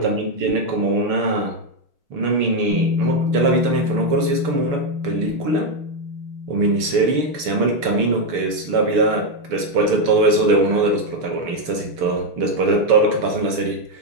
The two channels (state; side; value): late; left; 6.9 ms